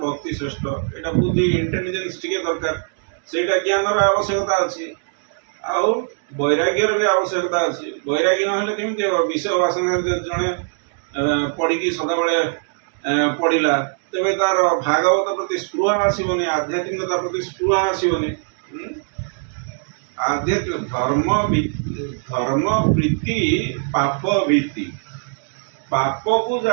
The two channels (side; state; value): left; silent; digital silence